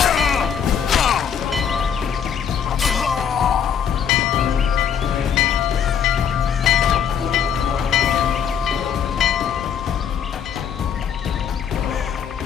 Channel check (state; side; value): quieter; right; 7.8 dB